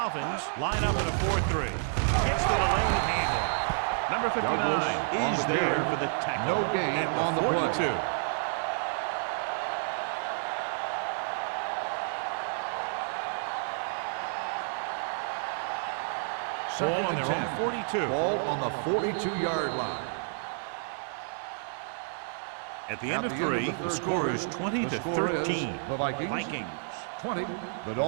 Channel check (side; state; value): left; silent; digital silence